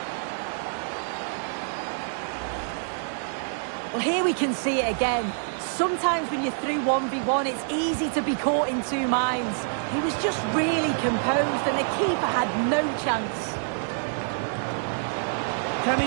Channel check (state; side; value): silent; left; 61 dB below the other